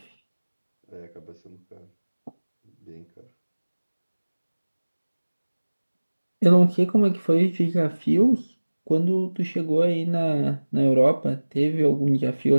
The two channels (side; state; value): both; inverted; correlation -1.00